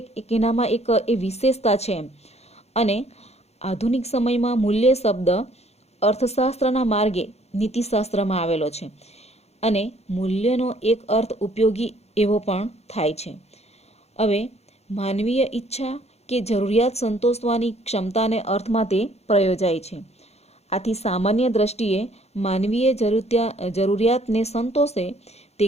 એનામાં એક એ વિશેષતા છે. અને આધુનિક સમયમાં મૂલ્ય શબ્દ અર્થશાસ્ત્રના માર્ગે નીતિશાસ્ત્રમાં આવેલો છે અને મૂલ્યનો એક અર્થ ઉપયોગી એવો પણ થાય છે. હવે માનવીય ઈચ્છા કે જરૂરિયાત સંતોષવાની ક્ષમતાને અર્થમાં તે પ્રયોજાય છે. આથી સામાન્ય દ્રષ્ટિએ માનવીય જરૂરિયાતને સંતોષે તે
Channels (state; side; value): late; right; 0.31 ms